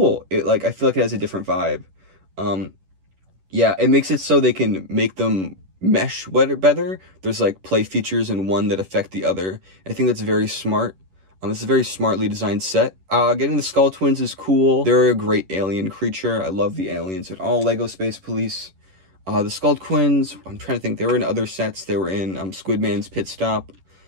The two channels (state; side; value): late; left; 11 ms